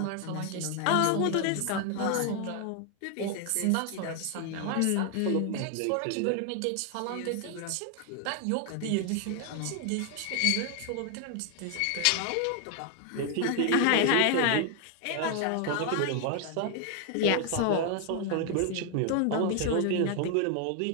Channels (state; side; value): different; both; correlation 0.00